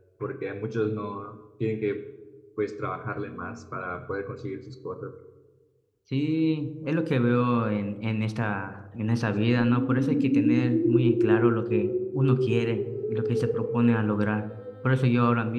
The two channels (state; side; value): identical; both; correlation 1.00